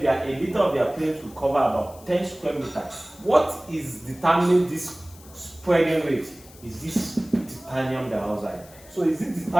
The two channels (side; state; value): left; noise; hiss, 22 dB below the sound